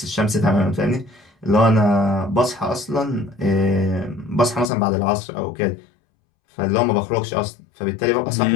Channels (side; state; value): right; drops out; at 4.7 s